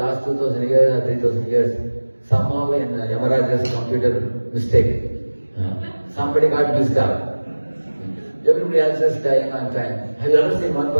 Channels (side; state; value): both; inverted; correlation -1.00